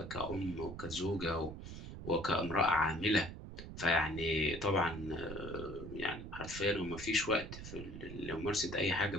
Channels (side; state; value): right; noise; rumble, 10 dB below the sound